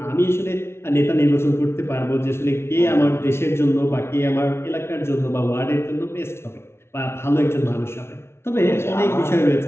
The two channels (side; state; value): right; late; 0.12 ms